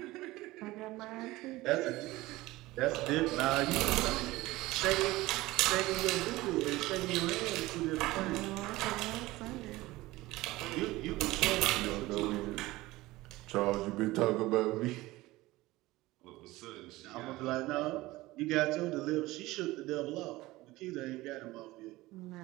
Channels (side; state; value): left; quieter; 19.0 dB